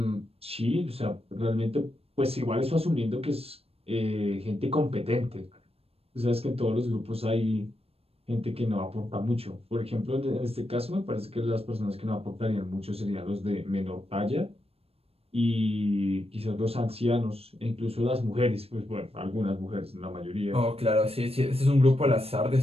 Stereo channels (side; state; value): left; late; 0.28 ms